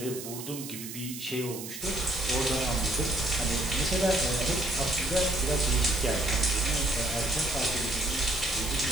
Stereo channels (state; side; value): noise; right; hiss, 10 dB below the sound